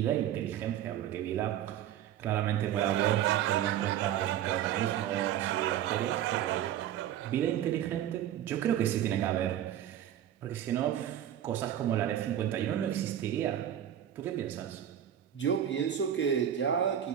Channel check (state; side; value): quieter; left; 10.8 dB